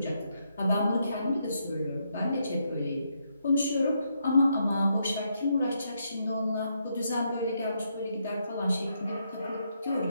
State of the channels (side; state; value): both; inverted; correlation -0.78